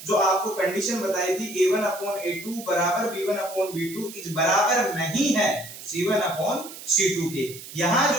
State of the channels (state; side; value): noise; right; hiss, 14 dB below the sound